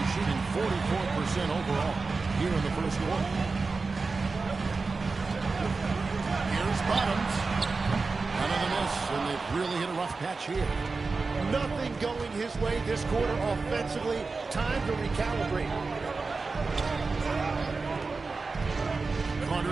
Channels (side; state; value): left; quieter; 4.1 dB